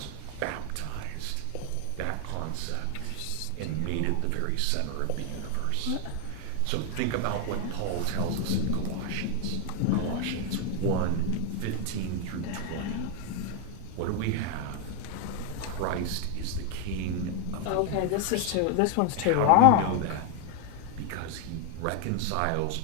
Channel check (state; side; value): different; both; correlation 0.01